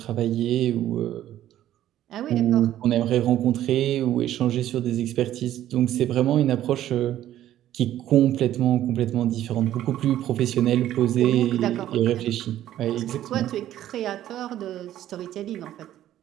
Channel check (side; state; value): left; quieter; 12.6 dB